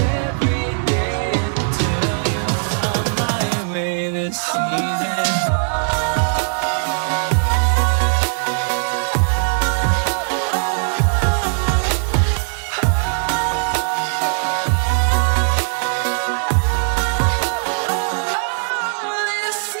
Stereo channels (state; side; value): silent; left; 57 dB below the other